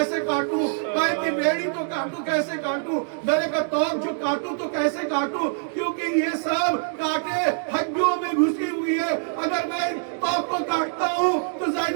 काटूं, पैर की बेड़ी तो काटूं कैसे काटूं, गले का तोक जो काटूं तो कैसे काटूं, क्योंकि ये सब कांटे हड्डियों में घुसी हुई है। अगर मैं तोक को काटता हूँ तो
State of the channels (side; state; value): left; silent; digital silence